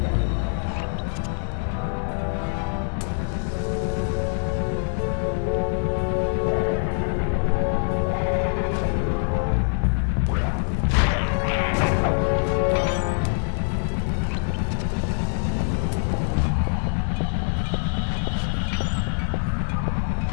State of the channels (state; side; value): silent; right; 57 dB below the other